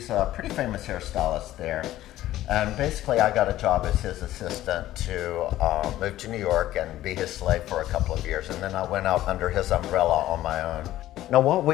a pretty famous hairstylist there. And basically I got a job as his assistant to move to New York and be his slave for a couple of years. And then I went out under his umbrella on my own. Now what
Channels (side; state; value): right; quieter; 14.3 dB